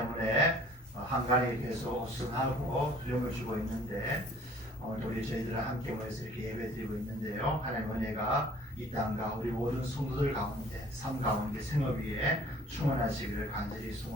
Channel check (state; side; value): normal; both; correlation 0.53